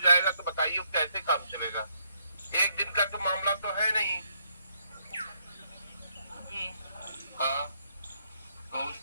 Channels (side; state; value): both; inverted; correlation -0.73